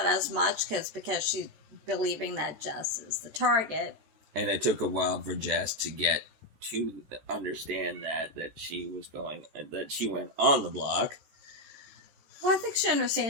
as much, because she's believing that Jess is the target. And it took a while for Jess to get to understand that she was going, that she went on the block. Well, I think she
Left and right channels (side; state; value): left; late; 14 ms